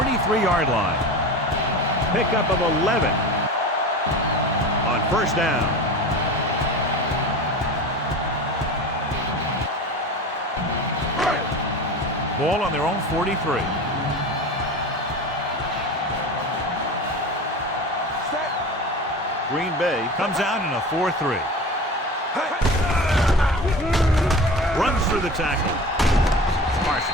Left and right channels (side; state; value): both; normal; correlation 0.32